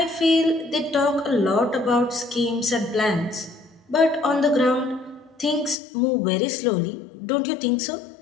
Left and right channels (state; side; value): drops out; right; at 5.8 s